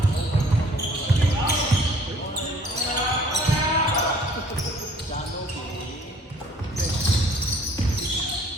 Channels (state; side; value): normal; both; correlation 0.56